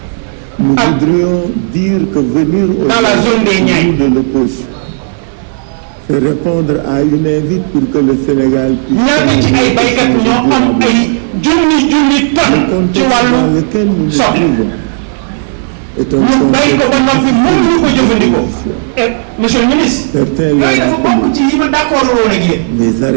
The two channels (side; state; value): left; silent; digital silence